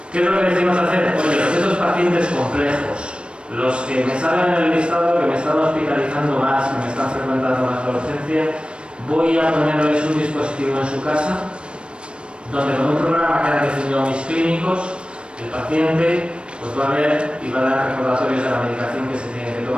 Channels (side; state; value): left; late; 0.057 ms